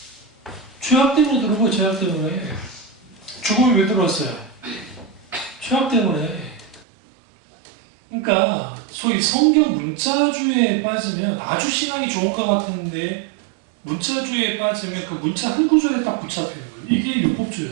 죄악 때문에 들어온 거예요. 죄악 때문에. 죽음이 왜 들어왔어요? 죄악 때문에. 그러니까 소위 성경 문자주의에 빠지면 아주 신앙이 좋은 것 같은데 문자주의에 빠지면 그 문자 한 구절에 딱 붙잡히는 거예요. 이게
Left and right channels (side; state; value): left; drops out; at 6.9 s